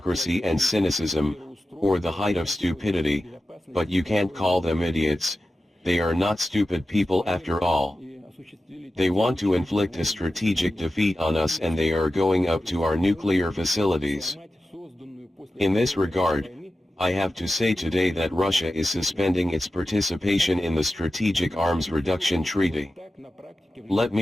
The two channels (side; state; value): both; normal; correlation 0.93